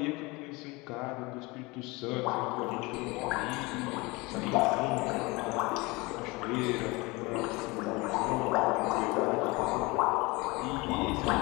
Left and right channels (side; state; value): right; quieter; 24.3 dB